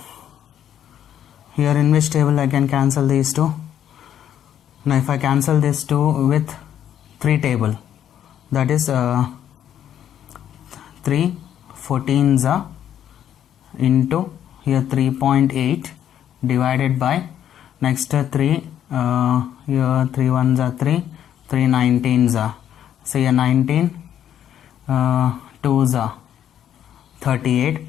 here in which table I can cancel these two. Now if I cancel these two with 3 table, that is 3 14s into here 3.8 divided by next 3 here 3 1s are 3 3 19s are, so here 19 2s are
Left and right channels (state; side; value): quieter; right; 10.2 dB